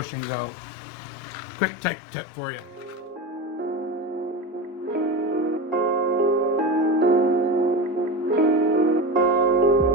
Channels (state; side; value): normal; both; correlation 0.24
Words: out. Quick tech tip for you.